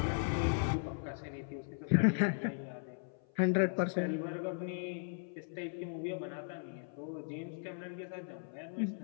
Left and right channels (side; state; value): right; silent; 53 dB below the other